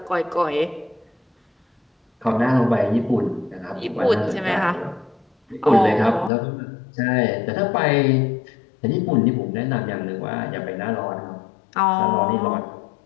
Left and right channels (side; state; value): right; drops out; at 6.3 s